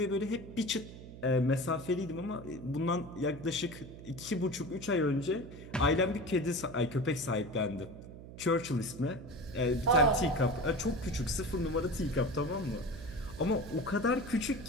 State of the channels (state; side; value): noise; right; hum, 14 dB below the sound